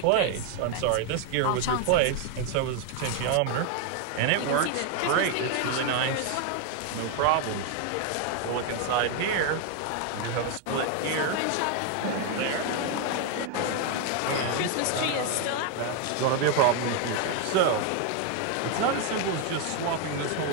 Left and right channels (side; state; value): both; different; correlation 0.01